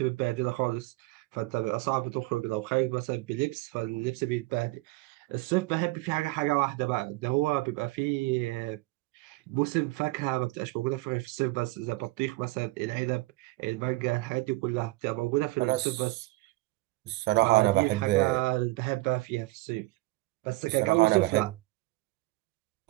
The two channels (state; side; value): quieter; left; 21.0 dB